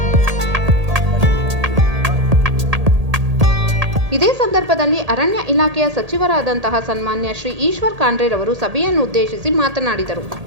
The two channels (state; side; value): late; left; 1.8 ms